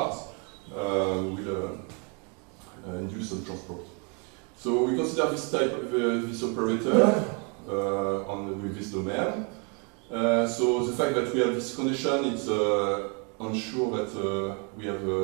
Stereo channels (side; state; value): left; quieter; 35.7 dB